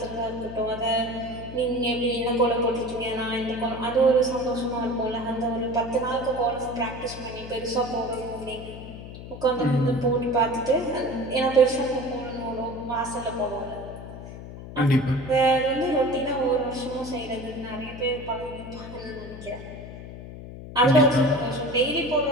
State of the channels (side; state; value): left; noise; hum, 12 dB below the sound